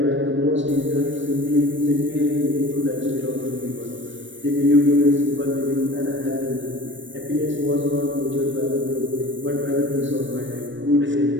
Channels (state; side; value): late; left; 0.55 ms